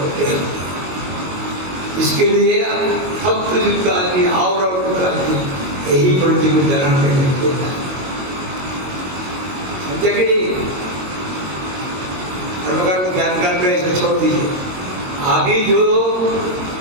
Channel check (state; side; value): late; left; 22 ms